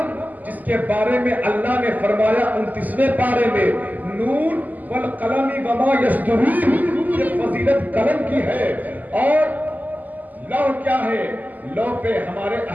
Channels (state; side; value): late; left; 0.081 ms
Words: جس کے بارے میں اللہ نے فرمایا 29ویں پارے میں نون والقلم وما یسطرون، یہ فضیلت قلم کی ہے. اور لوح کیا ہے؟ لوح پہ ہمارے